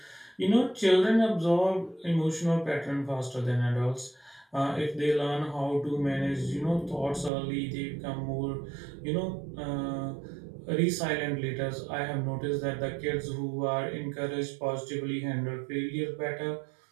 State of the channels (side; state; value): left; drops out; at 7.3 s